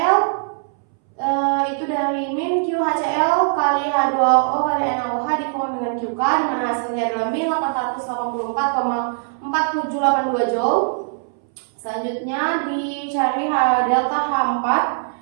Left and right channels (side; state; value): left; silent; 63 dB below the other